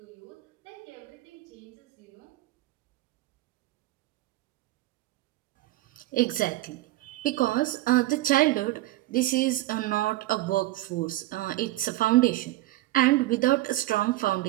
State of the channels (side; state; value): left; quieter; 17.1 dB